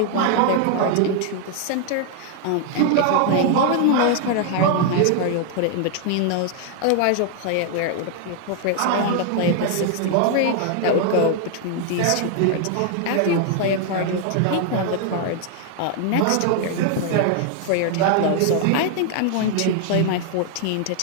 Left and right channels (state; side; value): different; both; correlation 0.00